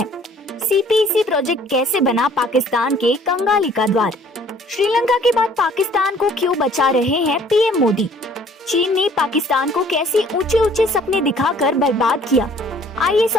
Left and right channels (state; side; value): normal; both; correlation 0.56